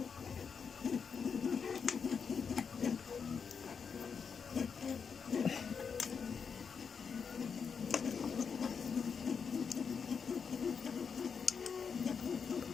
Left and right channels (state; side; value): quieter; right; 6.2 dB